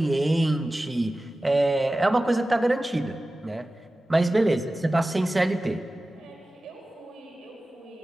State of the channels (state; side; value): normal; both; correlation 0.96